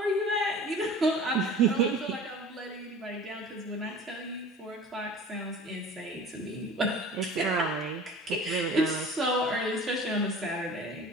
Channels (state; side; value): normal; both; correlation 0.42